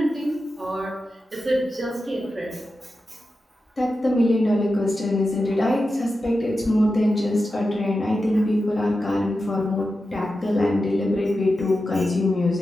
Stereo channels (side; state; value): both; normal; correlation 0.91